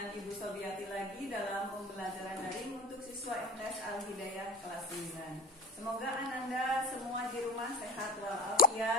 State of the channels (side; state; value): both; normal; correlation 0.35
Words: Ibu Sobiati lagi dalam pembelajaran daring untuk siswa MTS Al-Hidayah kelas 9. Semoga Ananda semua di rumah sehat